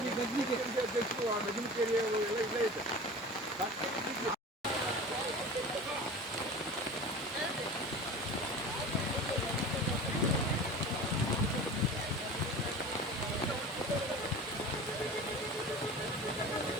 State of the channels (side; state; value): both; normal; correlation 0.36